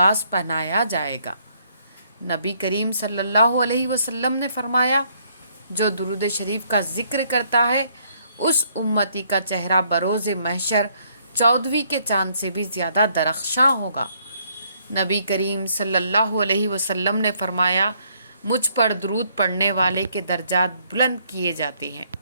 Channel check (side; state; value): both; inverted; correlation -0.67